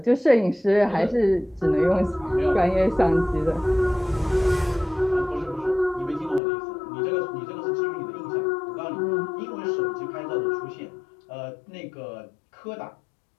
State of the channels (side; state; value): right; drops out; at 6.4 s